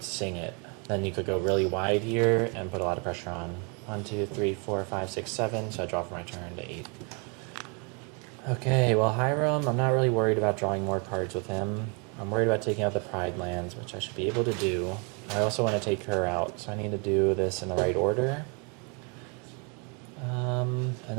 sing it. Then you could go really wide here and put a lot of pressure on. 1, 2, 3, 4, 5, 6, 7. So I draw for my turn to 8. Okay, well, Hiram, I'm not really worried about drawing more cards with him. I'm worried about taking out the Pride lands, which I should be able to do. I also want to take her out, so I need to do this in the right order. And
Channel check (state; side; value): quieter; left; 34.6 dB